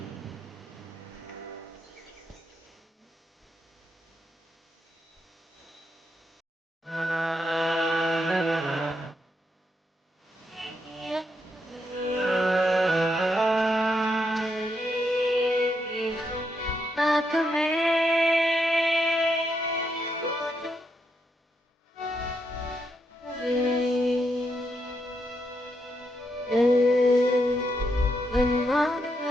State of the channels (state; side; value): normal; both; correlation 0.80